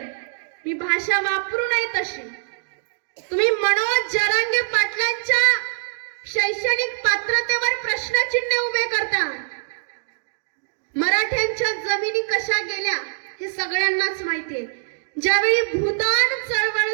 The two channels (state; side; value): silent; left; digital silence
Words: मी भाषा वापरू नये तशी. तुम्ही मनोज जरांगे पाटलांच्या शैक्षणिक पात्रतेवर प्रश्नचिन्ह उभे करता. मराठ्यांच्या जमिनी कशा गेल्या हे सगळ्यांनाच माहितीये. ज्यावेळी भूदान